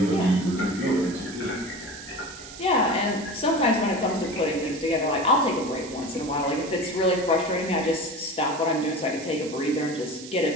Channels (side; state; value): right; noise; hiss, 15 dB below the sound